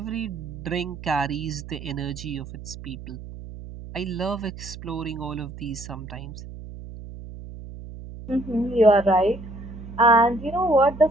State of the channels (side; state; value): right; noise; hum, 13 dB below the sound